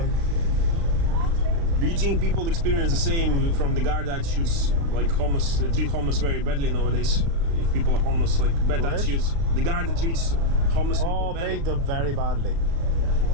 Do you think people experience the same from the guard attitudes, like homeless? They treat homeless very badly nowadays. If people are homeless, like bad What? attitudes. The guard that treats homeless people Oh, badly. big them very badly.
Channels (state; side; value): late; left; 35 ms